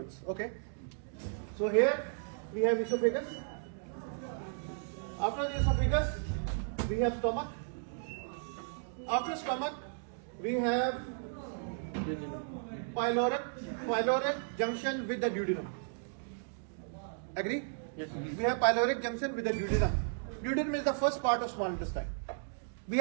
Okay. So here we have esophagus. After the esophagus, we have stomach. After stomach, we have pyloric junction with the duodenum. Agree? Yes. We have pyloric junction with the duodenum. Duodenum is the first part of small intestine. We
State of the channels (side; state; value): left; silent; digital silence